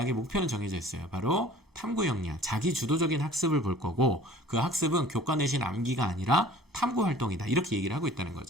목표는 정해져 있어요. 바로 탐구 역량, 자기주도적인 학습을 볼 거고, 그 학습은 교과 내신 암기가 아니라 탐구 활동이다. 이렇게 얘기를 하고 있다는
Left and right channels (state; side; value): normal; both; correlation 0.49